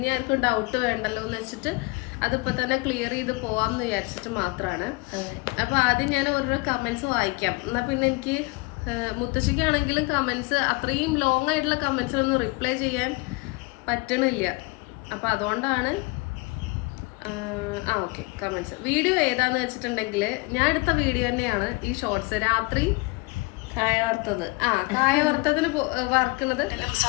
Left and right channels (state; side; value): quieter; right; 26.0 dB